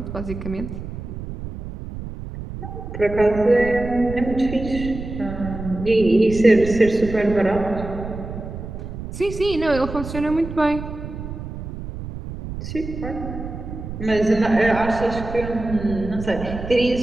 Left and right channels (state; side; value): noise; right; rumble, 9 dB below the sound